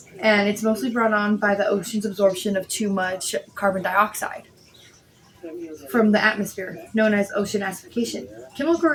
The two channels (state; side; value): identical; both; correlation 1.00